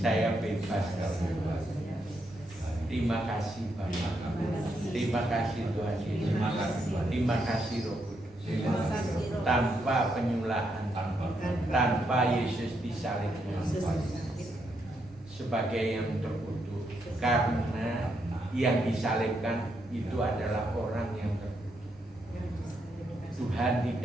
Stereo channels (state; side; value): normal; both; correlation 0.79